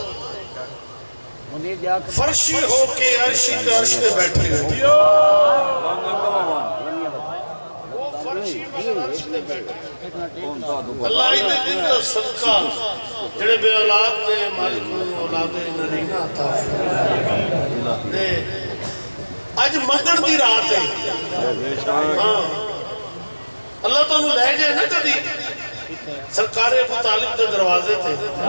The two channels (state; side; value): inverted; both; correlation -1.00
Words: फर्शी हो के अर्शी पे अर्श पे बैठे हो अल्लाह इने दिन दा सदका जेड़े बे औलाद ने मालिक नूं औलादे नरीना अता फरमाए। आज मंगण दी रात है। हां अल्लाह तानू ले जाए ना कदी सरकारे अबू तालिब दे दरवाजे ते